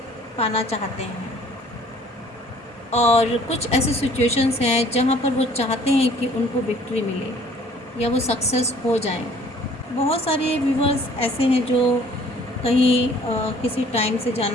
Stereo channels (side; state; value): both; normal; correlation 0.55